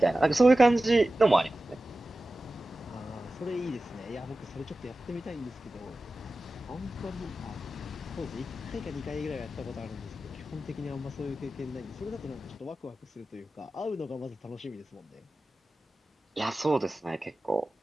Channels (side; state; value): both; normal; correlation 0.95